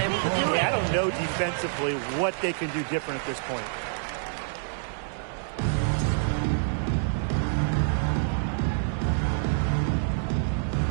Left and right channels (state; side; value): silent; left; digital silence